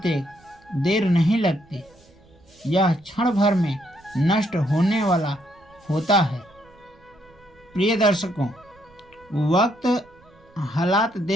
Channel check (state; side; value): noise; right; rumble, 29 dB below the sound